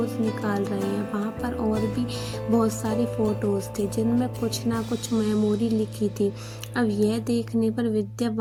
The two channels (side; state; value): both; identical; correlation 1.00